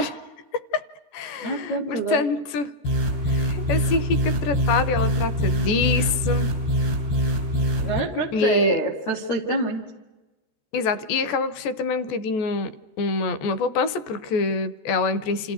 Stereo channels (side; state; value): right; late; 14 ms